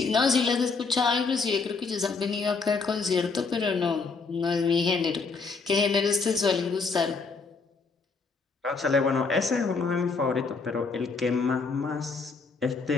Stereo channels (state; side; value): quieter; right; 4.5 dB